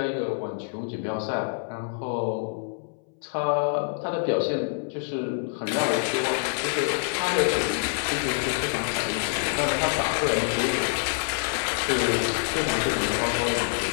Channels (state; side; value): silent; right; 61 dB below the other